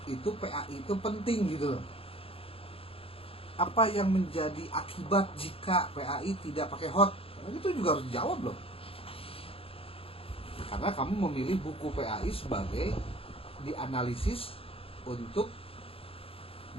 itu PAI itu penting gitu loh. Apa yang menjadi akibat jika PAI tidak pakai hot? Itu juga harus dijawab loh. Karena kamu memilih buku PAI sebagai dianalisis untuk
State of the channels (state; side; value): late; right; 0.27 ms